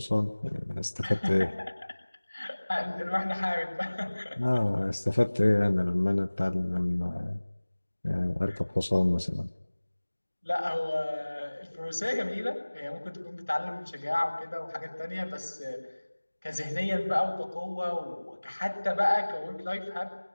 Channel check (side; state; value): both; inverted; correlation -1.00